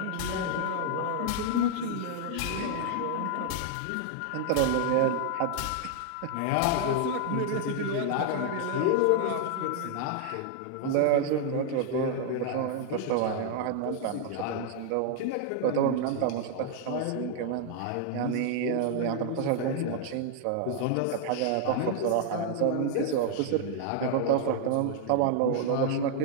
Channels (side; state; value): both; different; correlation 0.00